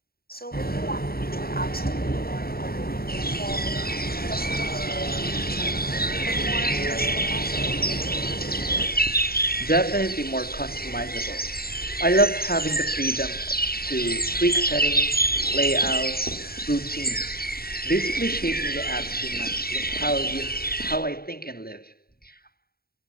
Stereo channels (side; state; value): right; late; 0.44 ms